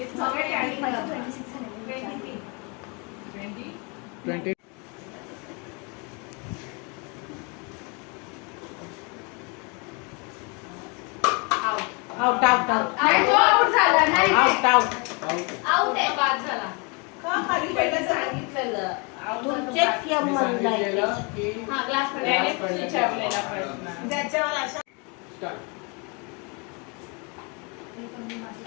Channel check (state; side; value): quieter; right; 31.9 dB